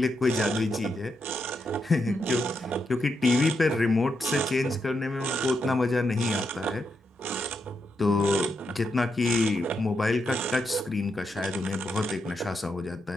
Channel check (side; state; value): both; normal; correlation 0.83